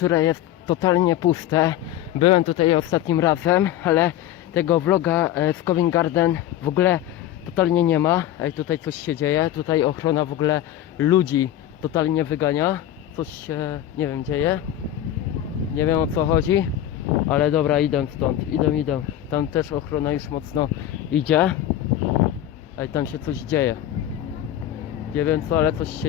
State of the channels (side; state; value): right; quieter; 12.1 dB